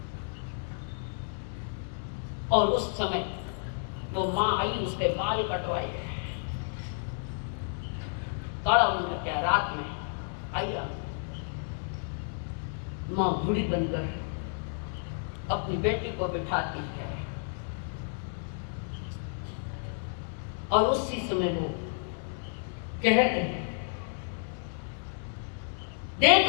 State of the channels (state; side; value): silent; right; digital silence